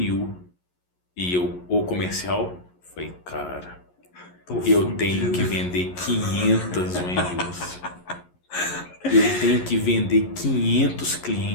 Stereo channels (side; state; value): right; late; 11 ms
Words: e o comercial, foi, cara, eu tenho que vender 500 ONUs. Eu tenho que vender 500